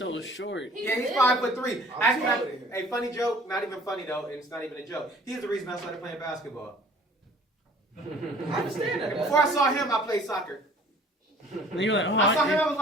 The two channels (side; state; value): both; normal; correlation 0.51